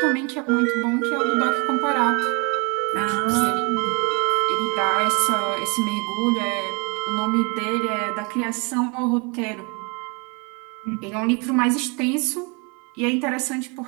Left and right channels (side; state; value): left; quieter; 28.8 dB